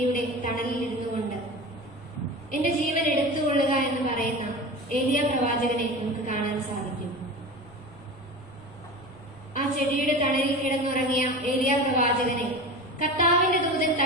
തണലിൽ ഇരുന്നുകൊണ്ട് എന്റെ ജീവൻ എടുത്തുകൊള്ളുക എന്ന് പറയുന്ന ഏലിയ പ്രവാചകനെ നമുക്ക് കാണാൻ സാധിക്കും. ആ ചെടിയുടെ തണലിൽ കിടന്നുറങ്ങിയ ഏലിയ പ്രവാചകനെ കർത്താവിന്റെ ദൂതൻ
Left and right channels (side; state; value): left; noise; rumble, 24 dB below the sound